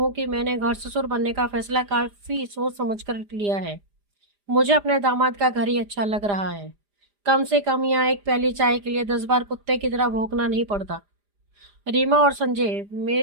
कि मैंने घर ससुर बनने का फैसला काफी सोच समझ कर लिया है। मुझे अपने दामाद का घर ही अच्छा लग रहा है। कम से कम यहाँ एक प्याली चाय के लिए 10 बार कुत्ते की तरह भौंकना नहीं पड़ता। रीमा और संजय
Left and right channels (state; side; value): late; left; 4.9 ms